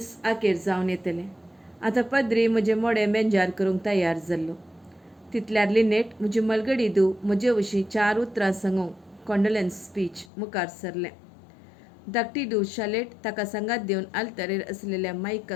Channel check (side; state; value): right; drops out; at 10.3 s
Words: आखेर जावन येतलें. आतां पद्री म्हजें मोडें बेंजार करूंक तयार जाल्लो. तितल्यार लिनेट म्हजी मलगडी धूव म्हजे विशीं 4 उतरां सांगूंक कॉन्डोलेन्स स्पीच मुखार सरलें. धाकटी धूव शालेट ताका सांगात दिवन आल्तारेर आशिल्ल्या